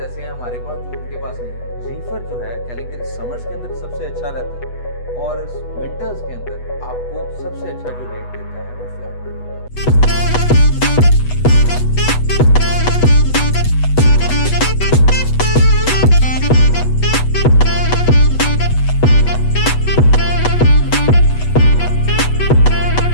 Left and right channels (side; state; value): right; late; 8.1 ms